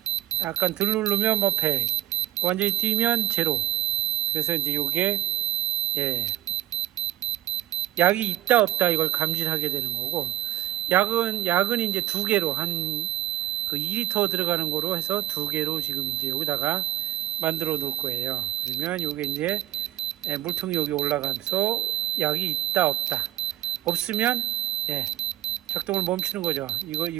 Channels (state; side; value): quieter; left; 12.4 dB